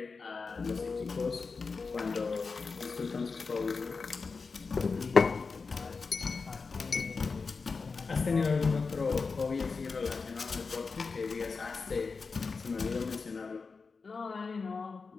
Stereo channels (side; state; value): right; quieter; 4.6 dB